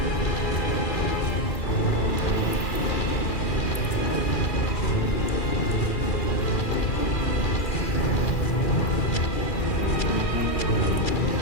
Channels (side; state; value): right; late; 2.4 ms